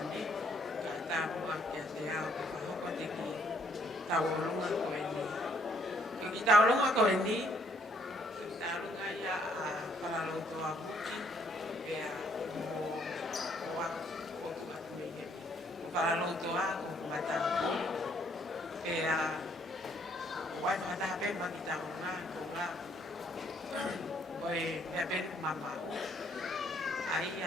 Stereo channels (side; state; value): both; normal; correlation 0.67